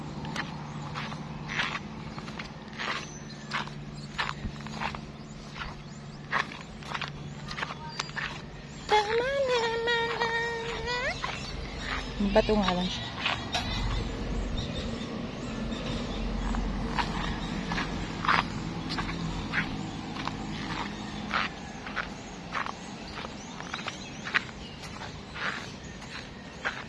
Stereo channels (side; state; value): both; identical; correlation 1.00